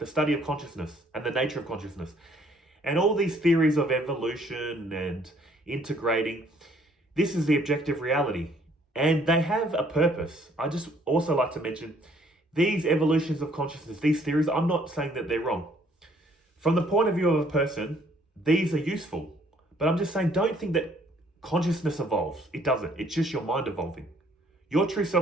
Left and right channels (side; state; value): both; normal; correlation 0.63